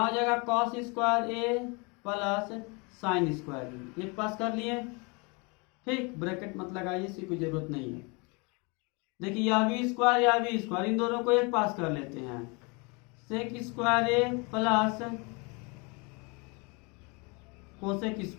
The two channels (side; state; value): right; quieter; 30.2 dB